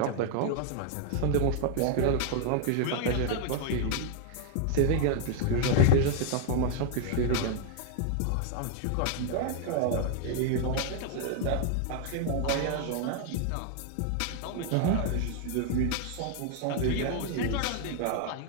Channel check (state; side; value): different; both; correlation 0.00